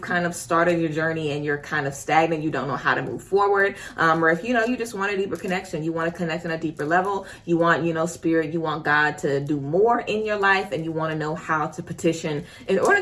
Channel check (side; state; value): both; identical; correlation 1.00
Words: of started your journey and you're kind of stagnant, you don't know how to move forward, or if you just want a deeper connection, you want to connect on a deeper level, you want, spirit, you want God to do more in your life, and you want to know how to petition in order